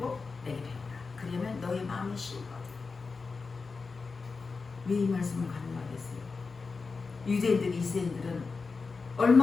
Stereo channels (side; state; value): right; quieter; 4.5 dB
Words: 내게 배우라. 그러면 너의 마음이 쉬거든. 왜 이 말씀을 가능하겠어요? 유대인들, 이스라엘들은